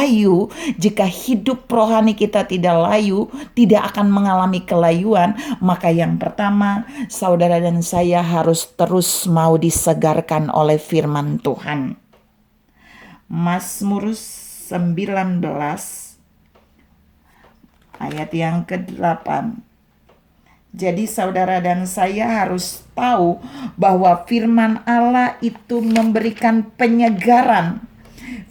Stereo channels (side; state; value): both; identical; correlation 1.00